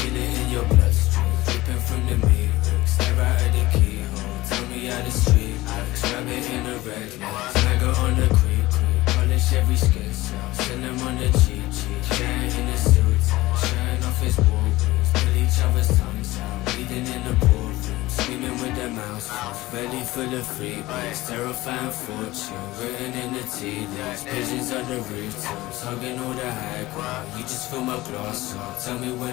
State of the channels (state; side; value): quieter; right; 18.6 dB